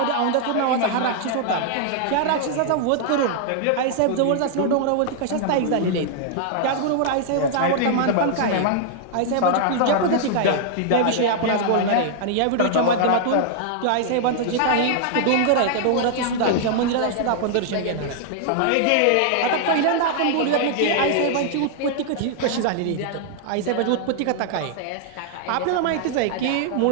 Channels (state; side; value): different; both; correlation -0.01